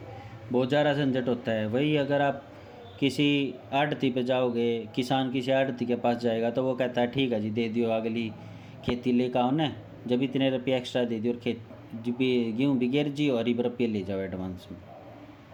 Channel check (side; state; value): both; identical; correlation 1.00